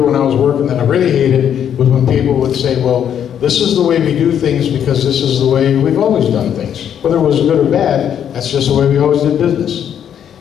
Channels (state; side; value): quieter; right; 9.2 dB